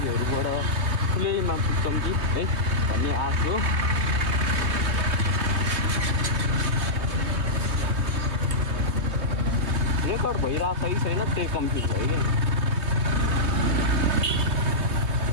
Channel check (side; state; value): left; late; 3.2 ms